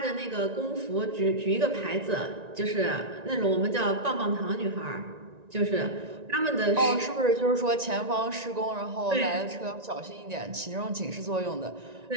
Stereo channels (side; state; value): left; late; 1.9 ms